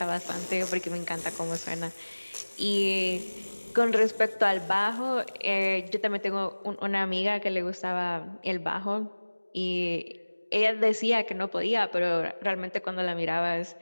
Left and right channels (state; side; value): inverted; both; correlation -1.00